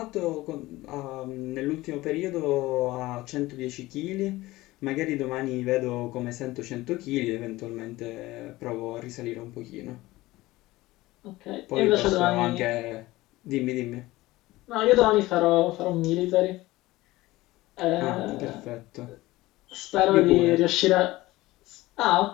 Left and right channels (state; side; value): quieter; right; 18.7 dB